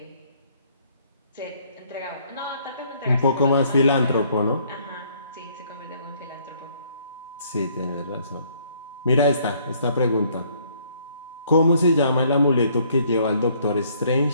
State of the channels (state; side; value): inverted; both; correlation -0.64